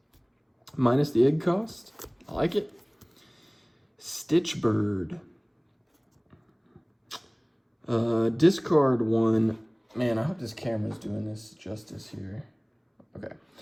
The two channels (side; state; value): both; identical; correlation 1.00